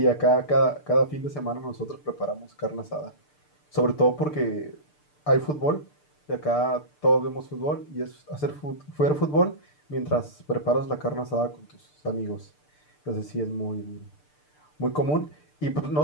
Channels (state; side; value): late; right; 6.7 ms